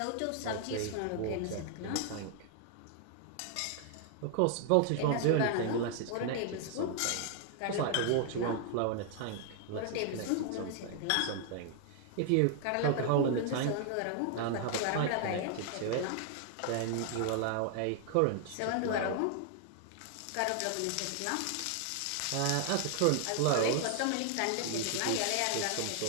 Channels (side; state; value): both; different; correlation 0.00